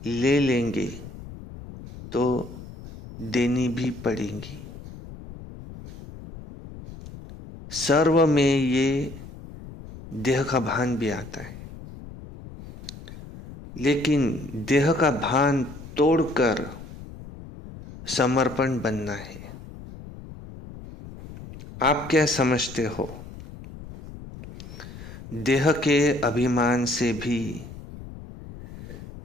ले लेंगे तो देनी भी पड़ेंगी। सर्व में ये देह का भान भी आता है, लेकिन देह का भान तोड़कर समर्पण बनना है। आप क्या समझते हो? देह के अभिमान से भी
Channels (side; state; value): left; noise; rumble, 14 dB below the sound